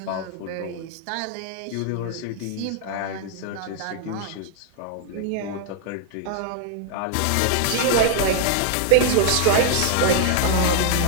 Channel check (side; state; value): both; different; correlation 0.00